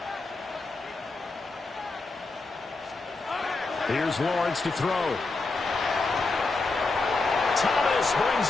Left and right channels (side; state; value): right; quieter; 3.6 dB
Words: Here's Lawrence to throw. Thomas